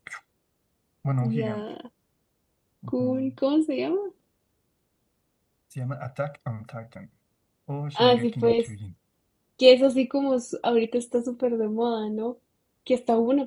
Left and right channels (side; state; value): both; identical; correlation 1.00